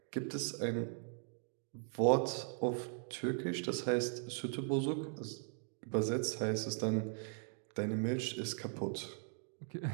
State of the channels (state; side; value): silent; left; 52 dB below the other